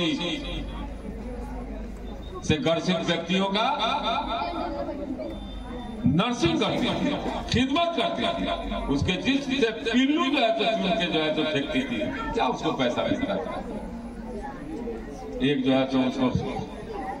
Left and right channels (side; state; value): both; identical; correlation 1.00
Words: से ग्रसित व्यक्तियों का नर्सिंग करती थी, खिदमत करती थी, उसके जिस्म से पिल्लू जो है तो चुन के जो है तो फेंकती थी, क्या उसको पैसा मिलता था? एक जो है तो उसको